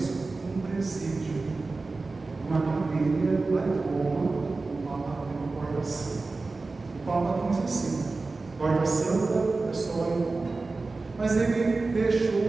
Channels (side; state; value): left; quieter; 3.7 dB